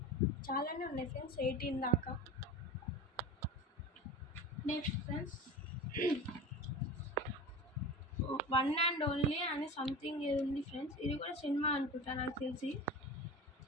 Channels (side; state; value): both; normal; correlation 0.31